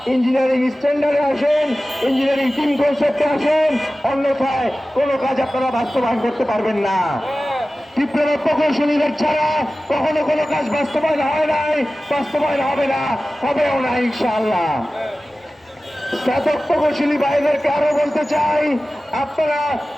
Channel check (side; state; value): both; normal; correlation 0.96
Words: ইঞ্জিনিয়ারিং স্ট্যান্ডার্ডে আসেন, ইঞ্জিনিয়ারিং টিম কনসেপ্টে আসেন, অন্যথায় কোনো কাজ আপনারা বাস্তবায়ন করতে পারবেন না। ডিপ্লোমা প্রকৌশলীদের ছাড়া কখনো কোনো কাজ বাস্তবায়ন হয় নাই, বাস্তবায়ন হবে না, হবেও না ইনশাআল্লাহ। স্নাতক প্রকৌশলী ভাইদেরকে আরো বলতে চাই, আপনারা